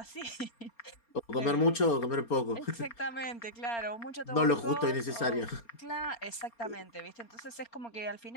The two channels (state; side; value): late; right; 4.3 ms